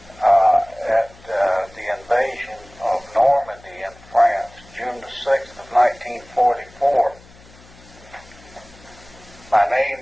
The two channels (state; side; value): noise; left; hum, 24 dB below the sound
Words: at the invasion of Normandy in France, June the 6th of 1944. My